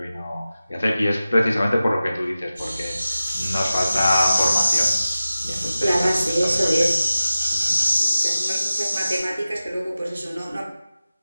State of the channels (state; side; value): inverted; both; correlation -0.94